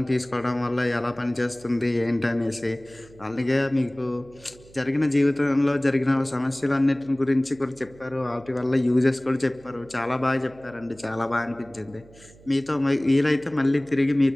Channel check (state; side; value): noise; right; hum, 24 dB below the sound